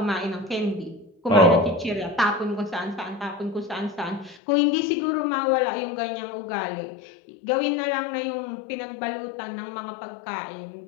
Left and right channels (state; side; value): drops out; right; at 4.4 s